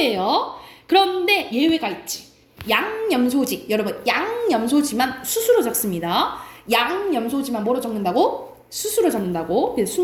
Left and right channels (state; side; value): identical; both; correlation 1.00